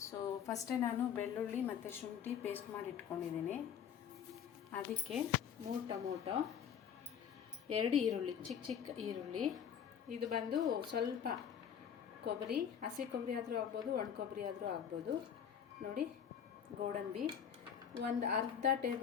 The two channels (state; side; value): quieter; right; 8.2 dB